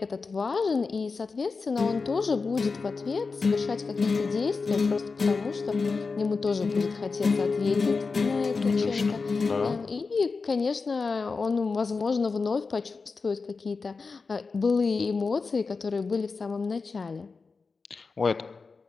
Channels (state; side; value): quieter; right; 4.5 dB